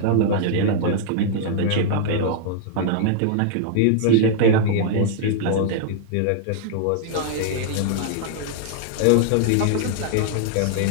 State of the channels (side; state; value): both; different; correlation -0.01